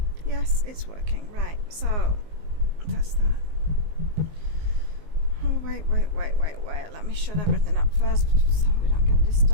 Yes, it's working. Right, so that's that. Oh, wait. Let me shut everything up first so we don't get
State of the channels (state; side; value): late; left; 19 ms